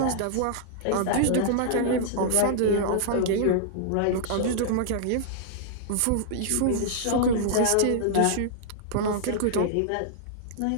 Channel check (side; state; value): both; different; correlation -0.01